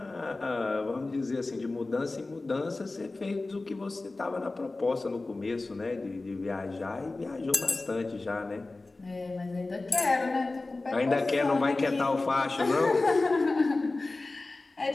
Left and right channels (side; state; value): right; quieter; 3.2 dB